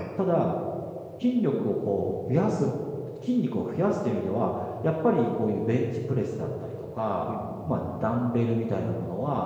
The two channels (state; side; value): identical; both; correlation 1.00